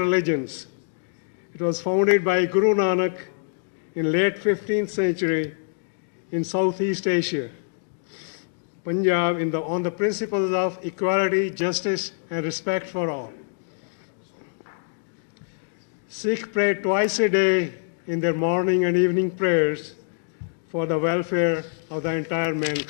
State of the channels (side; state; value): right; silent; digital silence